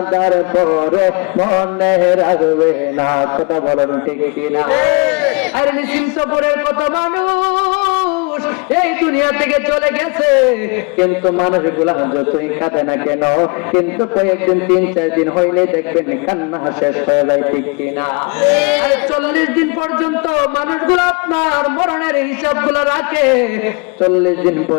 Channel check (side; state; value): right; quieter; 31.8 dB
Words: পরে মনে রাখবে না। কথা বলেন ঠিক কিনা? আরে নিশ্চিন্ত পরের কত মানুষ এই দুনিয়া থেকে চলে গেছে, কিন্তু মানুষগুলা যতই কাঁদে না কেন, কিন্তু কয়েকদিন 3-4 দিন হইলে দেখবেন কান্না শেষ হয়ে যায়। ঠিক কিনা? আরে 40 দিন পর্যন্ত মানুষগুলো আপনার মরণের হিসাব গুলো রাখে, 40 দিন